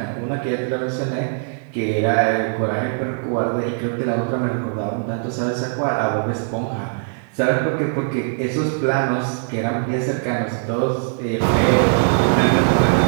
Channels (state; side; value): silent; left; 65 dB below the other